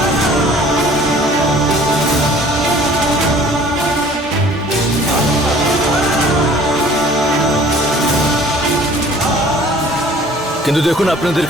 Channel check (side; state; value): both; normal; correlation 0.51